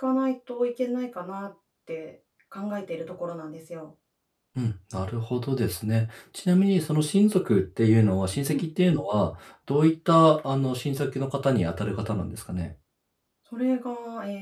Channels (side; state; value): both; identical; correlation 1.00